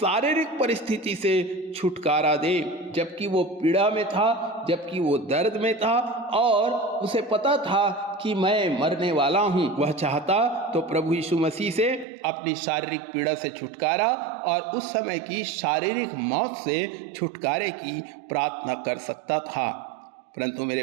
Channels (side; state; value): left; drops out; at 12.1 s